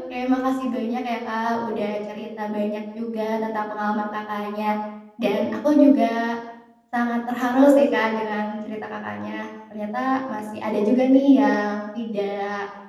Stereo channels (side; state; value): both; identical; correlation 1.00